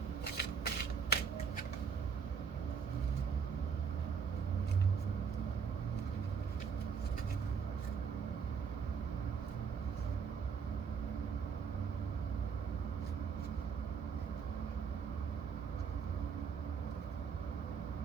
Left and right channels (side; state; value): left; quieter; 6.2 dB